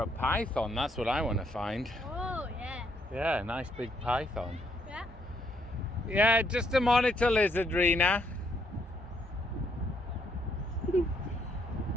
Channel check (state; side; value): normal; both; correlation 0.72